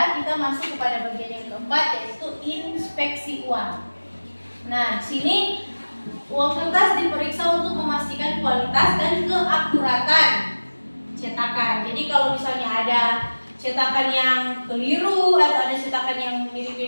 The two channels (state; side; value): inverted; both; correlation -1.00